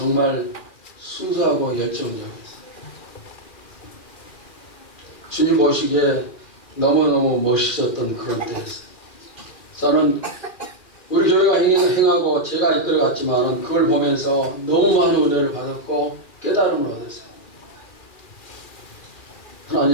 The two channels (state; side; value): late; right; 2.4 ms